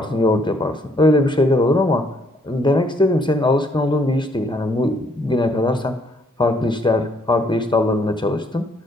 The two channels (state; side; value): normal; both; correlation 0.68